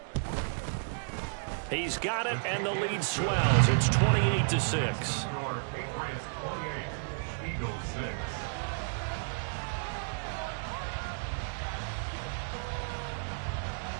He's got it, and the lead swells. It's 28-6. Patriots 28, Eagles 6.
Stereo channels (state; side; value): silent; left; digital silence